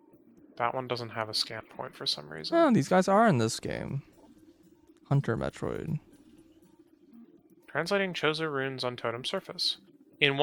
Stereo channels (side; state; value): both; identical; correlation 1.00